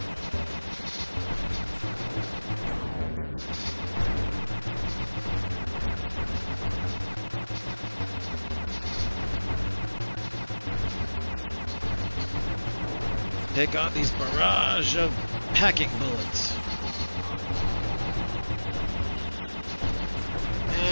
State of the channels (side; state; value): both; inverted; correlation -1.00